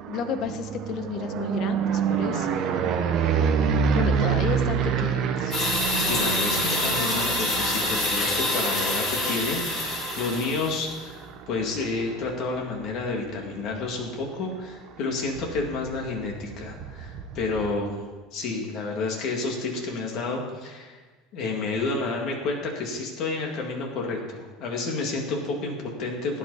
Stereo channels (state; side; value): normal; both; correlation 0.36